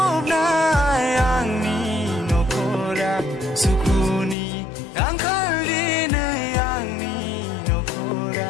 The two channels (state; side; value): drops out; right; at 4.4 s